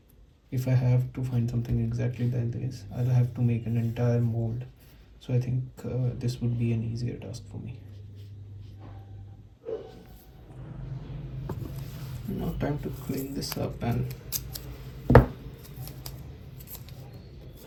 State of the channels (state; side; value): identical; both; correlation 1.00